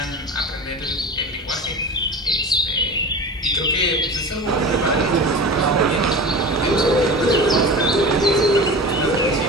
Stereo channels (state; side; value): normal; both; correlation 0.32